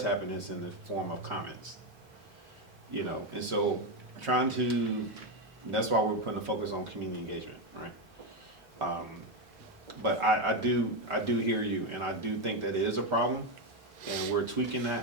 happen, it's in the form of comments. You know, and so that's why we're putting a focus on community engagement, right? But I do hear you, and I do think that it is a problem, and we're tweaking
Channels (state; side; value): normal; both; correlation 0.08